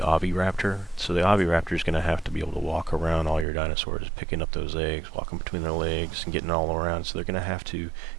Oviraptor. So the Oviraptor is going to have to be able to walk around all your dinosaurs, picking up those eggs, walking between their legs, and getting all around. So they're going to have to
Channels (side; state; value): left; drops out; at 3.5 s